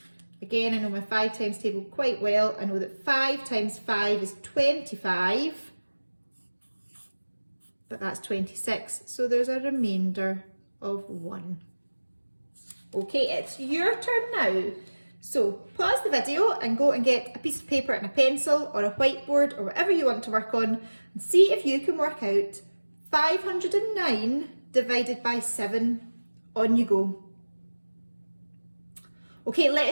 Again, I know my 5 times table quite well. I know that 5 times 5 is 25. But that's 26, so there's a remainder of 1. Okay, it's your turn now. So pause the video and go and get a piece of paper and a pencil or a whiteboard or whatever you want to work on and see if you can work out 509 divided by 7. On you go. Okay,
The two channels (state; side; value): inverted; both; correlation -1.00